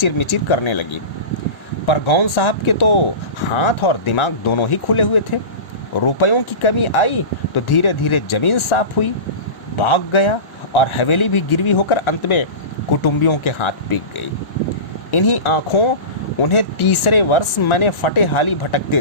मिचिर करने लगी। पर गौन साहब के तो हाथ और दिमाग दोनों ही खुले हुए थे। रुपयों की कमी आई तो धीरे धीरे जमीन साफ हुई, भाग गया और हवेली भी गिरवी होकर अंत में कुटुंबियों के हाथ बिक गई। इन्हीं आंखों उन्हें तीसरे वर्ष मैंने फटे हाली भटकते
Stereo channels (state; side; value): late; right; 1.1 ms